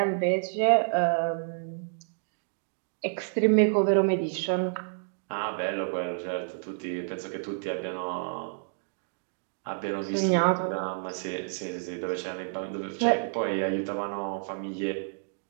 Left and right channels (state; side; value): silent; left; digital silence